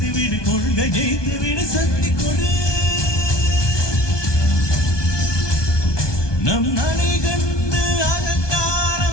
விடு கொள்கை ஜெயித்து விடு சக்தி கொடு நம் நடை கண்டு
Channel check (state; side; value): late; right; 1.2 ms